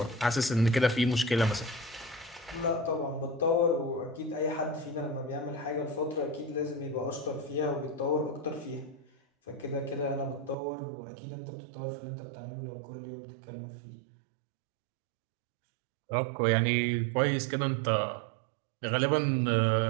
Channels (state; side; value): drops out; left; at 10.6 s